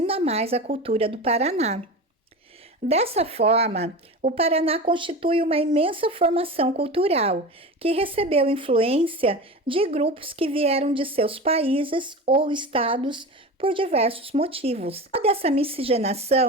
mais a cultura do Paraná. Dessa forma, o Paraná constitui uma imensa formação cultural, que recebeu influência de grupos que vieram de seus países ou estados por diversos motivos. Toda essa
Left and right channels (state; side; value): normal; both; correlation 0.29